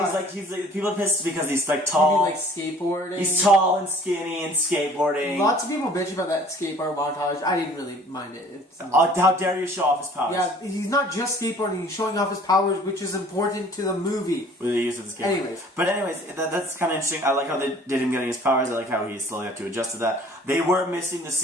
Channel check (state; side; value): normal; both; correlation 0.52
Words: he's like people are pissed because he's like Maybe tall. like skateboarding. He's tall and skinny and skateboarding. Lots of people bitch about that skateboard montage. I didn't really mind it. It's How dare you show off his powers? yeah, he's not just skateboarding. He's showing off his powers, which is important to the movie. With the use of the skateboard. Anyways. That's kind of interesting. I like how they did him getting his powers. I like how he slowly had to adjust to that. They were missing the